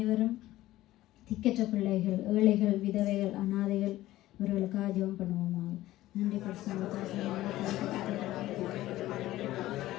திக்கற்ற பிள்ளைகள், ஏழைகள், விதவைகள், அனாதைகள் இவர்களுக்காக ஜெபம் பண்ணுவோமா? நன்றி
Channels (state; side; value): quieter; right; 15.7 dB